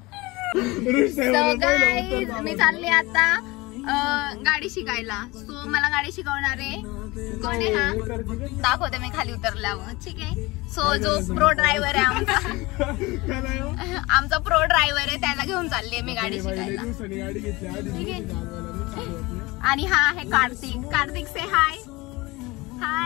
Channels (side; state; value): right; quieter; 22.3 dB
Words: मी चालले आता गाडी शिकायला. सो मला गाडी शिकवणारे कोण आहे? हा दाखवते मी खाली उतरल्यावर. ठीक आहे. सो जो प्रो ड्रायव्हर आहे आमचा प्रो ड्रायव्हर आहे, त्याला घेऊन चालली मी गाडी शिकायला. ठीक आहे. आणि हा आहे कार्तिक से हाय.